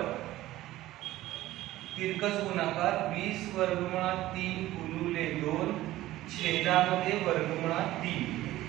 तिरकस गुणाकार 20 वर्गमुळात 3 गुणिले 2 छेदामध्ये वर्गमुळात 3,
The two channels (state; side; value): quieter; left; 15.8 dB